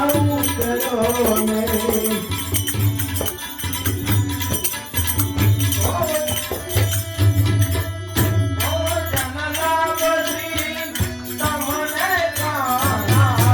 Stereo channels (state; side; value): identical; both; correlation 1.00